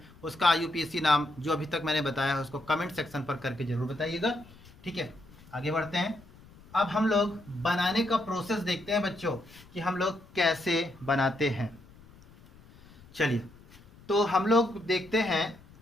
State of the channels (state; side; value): noise; left; rumble, 23 dB below the sound